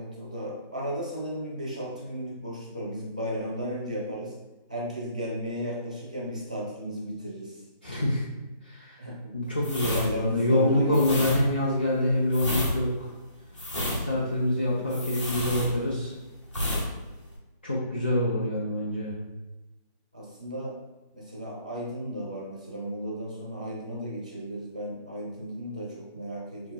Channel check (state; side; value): inverted; both; correlation -0.64